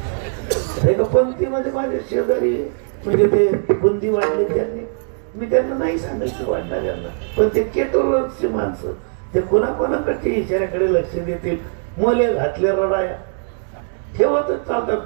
पंक्तीमध्ये माझे शेजारी म्हणजे ते बुंदी वाढले त्यांनी, मी त्यांना नाही सांगितलं वाढणाऱ्यांना, पण ते केटोरची माणसं ते कोणाकोणाकडच्या इशाऱ्याकडे लक्ष देतील. मोले घातल्या रडाया ठेवतच चालतात,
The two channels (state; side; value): silent; left; 66 dB below the other